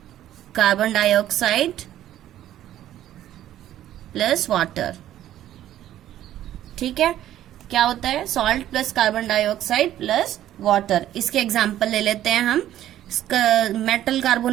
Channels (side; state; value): left; quieter; 12.5 dB